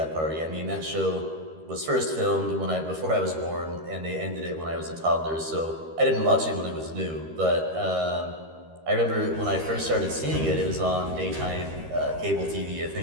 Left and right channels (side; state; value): left; late; 13 ms